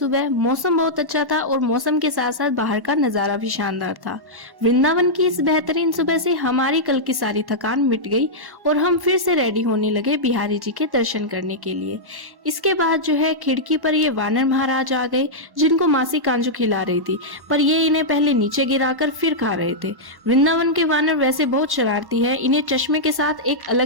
मौसम बहुत अच्छा था और मौसम के साथ साथ बाहर का नजारा भी शानदार था। वृंदावन की इस बेहतरीन सुबह से हमारी कल की सारी थकान मिट गई और हम फिर से रेडी होने लगे बिहारी जी के दर्शन करने के लिए। इसके बाद जो है खिड़की पर ये वानर महाराज आ गए, जिनको मासी कांजू खिला रही थी, पर ये इन्हें पहले नीचे गिराकर फिर खा रहे थे। वृंदावन के वानर वैसे बहुत शरारती है, इन्हें चश्मे के साथ एक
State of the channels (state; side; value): late; left; 1.1 ms